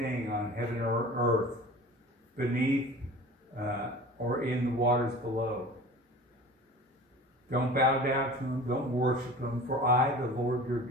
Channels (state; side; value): normal; both; correlation 0.39